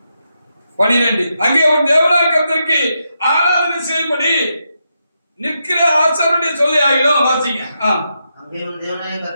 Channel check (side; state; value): both; inverted; correlation -0.84